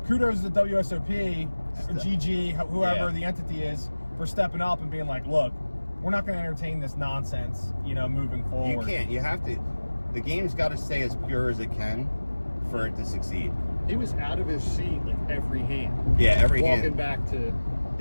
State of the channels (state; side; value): inverted; both; correlation -1.00